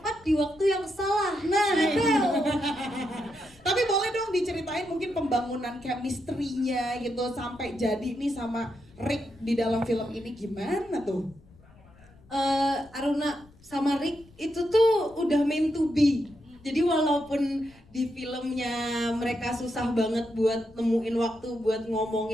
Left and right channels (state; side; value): noise; left; rumble, 26 dB below the sound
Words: di waktu yang salah. Nah, itu. Tapi boleh dong diceritain mungkin pembangunan chemistry-nya gitu sampai jadi nih sama Rick di dalam film ini gimana tuh? Aruna sama Rick itu tuh udah meant to be. Jadi walaupun di filmnya mereka susah banget buat nemuin waktu buat